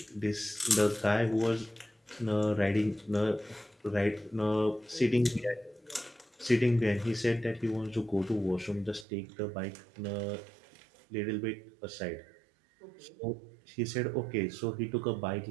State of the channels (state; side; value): drops out; left; at 9.1 s